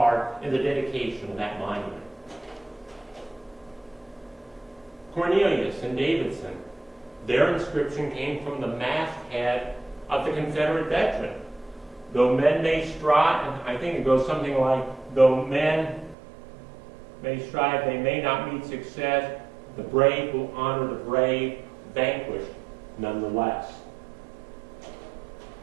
in the dedication of that monument. Cornelius and Davidson, their inscription came from the masthead of the Confederate veteran. Though men may strive, and I think it goes something like, though men may strive, they may not meet success, the brave will honor the brave, vanquished nonetheless.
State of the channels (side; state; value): left; drops out; at 16.2 s